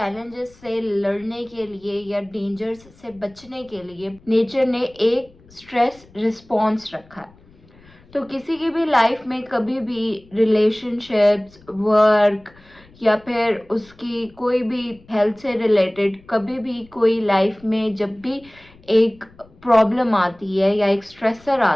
से लड़ने के लिए या डेंजर्स से बचने के लिए नेचर ने एक स्ट्रेस रिस्पॉन्स रखा है। तो किसी की भी लाइफ में कभी भी रिलेशनशिप्स, वर्क या फिर उसकी कोई भी हेल्थ से रिलेटेड कभी भी कोई लाइफ में जब भी एक प्रॉब्लम आती है या एक स्ट्रेसर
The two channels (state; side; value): noise; left; rumble, 27 dB below the sound